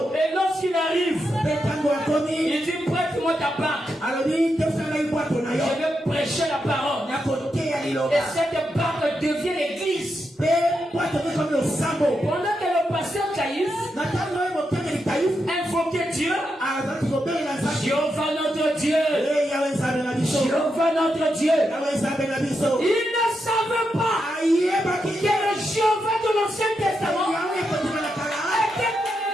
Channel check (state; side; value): normal; both; correlation 0.85